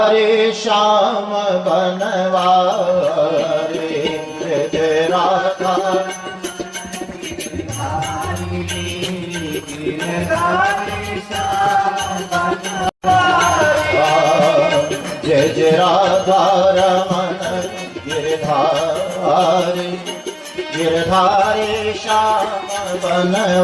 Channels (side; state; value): both; identical; correlation 1.00